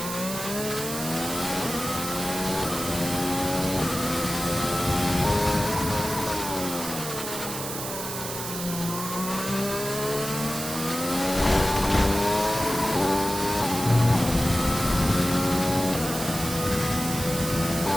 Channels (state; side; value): noise; right; hiss, 6 dB below the sound